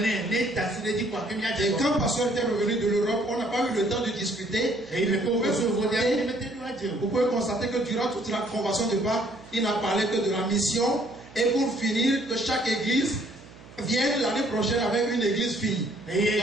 le pasteur était revenu de l'Europe, on n'a pas eu le temps de discuter. Vous pouvez constater que durant toute la convention de Pâques, il n'a parlé que de la mission. Et pour finir, que chaque église vienne l'année prochaine avec une église fille.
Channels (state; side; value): noise; right; hum, 21 dB below the sound